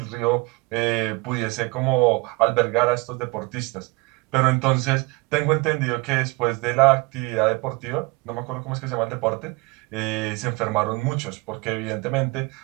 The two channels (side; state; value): left; quieter; 25.8 dB